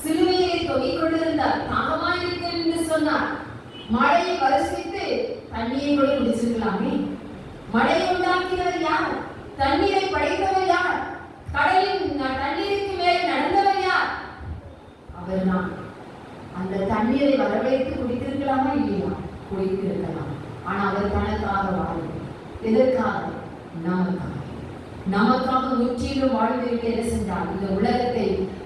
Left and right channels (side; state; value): both; identical; correlation 1.00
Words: சிலுவையை தொங்கிக் கொண்டிருந்தார், தாகமாய் இருக்கிறேன் என்று சொன்னார். மழையை வருஷித்து தண்ணீரை கூட குடிச்சிருக்கலாமே. மழையை உண்டாக்கினவர் யார்? தண்ணீரை படைத்தவர் யார்? கடலின் தண்ணீருக்கு மேலே நடந்தவர் யார்? அவர் தான். அந்த தண்ணீரை வரவழைத்து குடித்திருக்கலாமா? இல்லையா? குடித்திருக்கலாம். ஆனா அவர் தனக்காக வாழ்ந்தார். எதற்காக? நமக்காக முற்றிலும் வாழ்ந்திருக்க என்ன சென்றார்? இந்த உலகத்தை